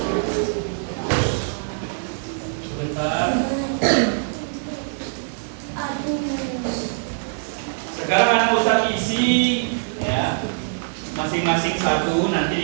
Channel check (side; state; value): left; silent; 63 dB below the other